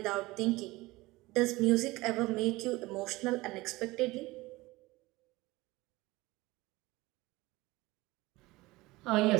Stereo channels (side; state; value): left; quieter; 20.4 dB